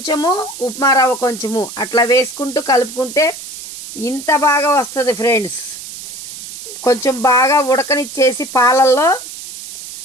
ఉప్మా రవ్వ కొంచెము అట్లా వేసుకుంటూ కలుపుకుంటే ఇంత బాగా వస్తుంది ఫ్రెండ్స్. కొంచెం బాగా ఉడకనిచ్చేసి పాలల్లో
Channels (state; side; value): noise; right; hiss, 12 dB below the sound